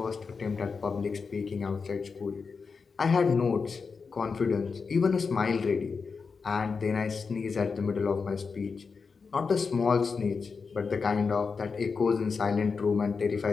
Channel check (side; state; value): right; quieter; 5.1 dB